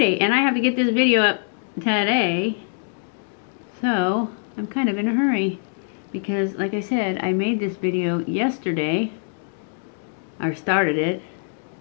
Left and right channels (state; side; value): silent; right; digital silence